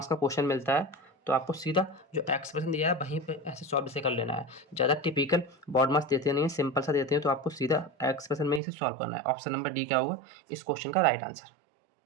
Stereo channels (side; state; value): left; drops out; at 8.6 s